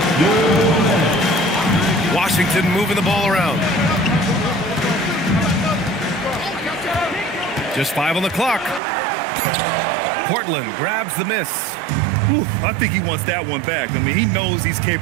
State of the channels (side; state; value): left; drops out; at 8.8 s